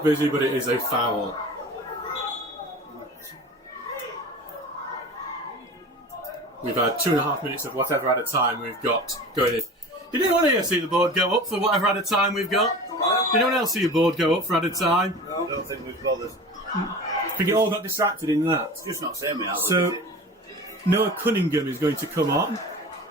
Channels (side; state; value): both; normal; correlation 0.36